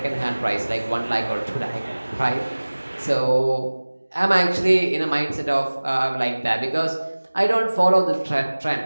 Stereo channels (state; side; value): inverted; both; correlation -1.00